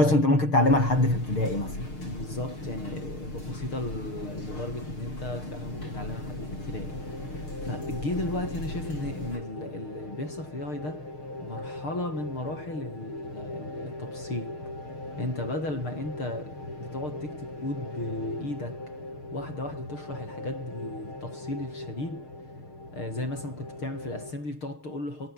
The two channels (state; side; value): late; right; 6.6 ms